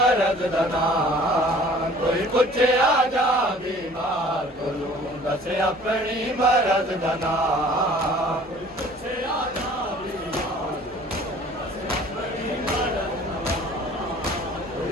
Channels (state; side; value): normal; both; correlation 0.50